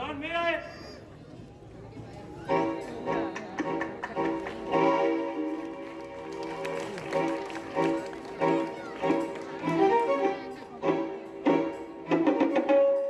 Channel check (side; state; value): both; identical; correlation 1.00